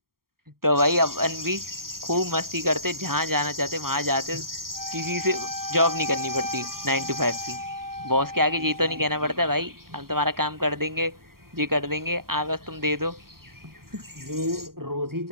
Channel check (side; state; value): left; late; 0.93 ms